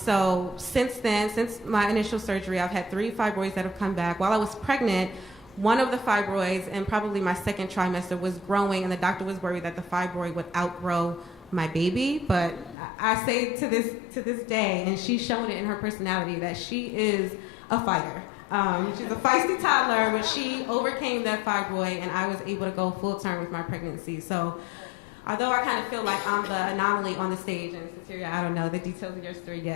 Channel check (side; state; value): right; drops out; at 12.8 s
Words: since then, since my initial surgery, I've had 3 fibroids that have come back. While I was pregnant, one of the fibroids, and probably my second trimester, was growing, and the doctor was worried that the fibroid would outgrow my baby. But I say to this day, and she's shown it in her personality, that she is a fighter. She's a feisty toddler, but she overcame that fibroid, and I was able to go full term with my pregnancy. So although I kind of feel like I'm the anomaly on the stage, and Cecilia, I don't know the details of your story